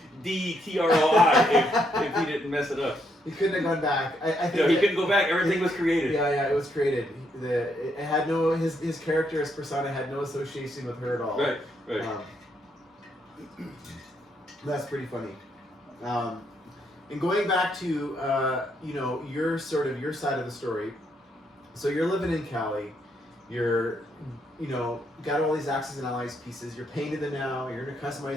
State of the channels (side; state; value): both; normal; correlation 0.75